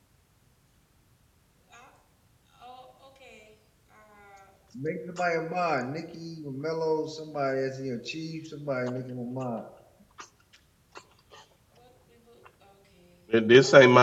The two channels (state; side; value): identical; both; correlation 1.00